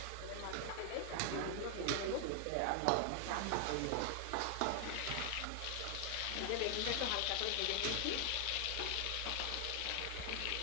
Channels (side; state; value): both; different; correlation 0.00